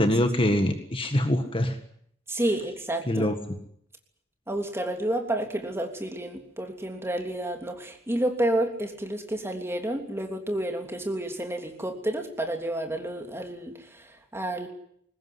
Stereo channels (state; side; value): normal; both; correlation 0.75